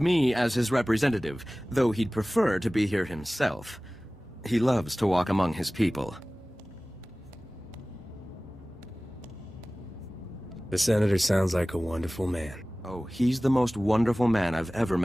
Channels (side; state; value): both; normal; correlation 0.98